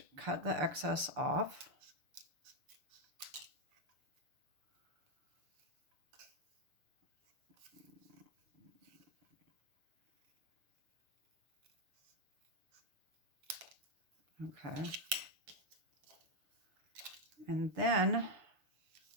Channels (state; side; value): late; left; 6.8 ms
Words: cut the excess off. Okay. And then